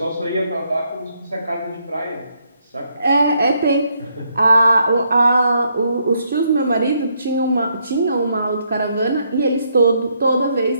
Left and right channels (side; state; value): both; inverted; correlation -0.75